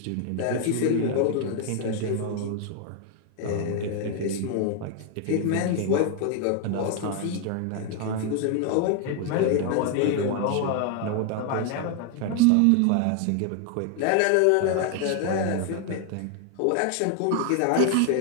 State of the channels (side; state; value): both; different; correlation 0.00